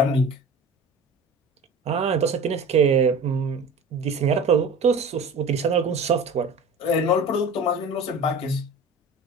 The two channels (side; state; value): both; normal; correlation 0.38